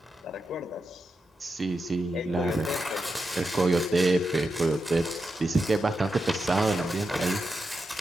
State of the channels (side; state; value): both; normal; correlation 0.87